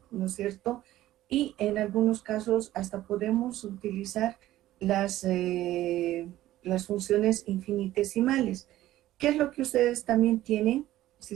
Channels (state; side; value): quieter; left; 14.7 dB